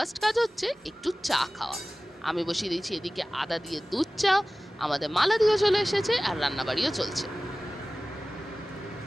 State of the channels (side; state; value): both; normal; correlation 0.97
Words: কাজ হচ্ছে একটু চা খাওয়া। আমি বসিয়ে দিয়েছি এদিকে আদা দিয়ে দুধ চা, আমাদের মালাদিও চলে এসেছে আর রান্নাবাড়িও চলছে।